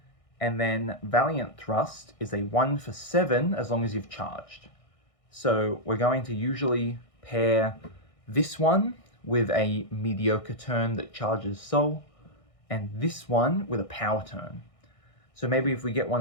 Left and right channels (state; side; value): late; right; 1.6 ms